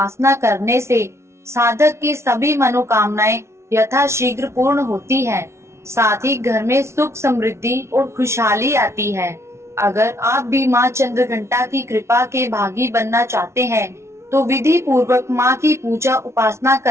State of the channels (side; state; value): left; late; 0.13 ms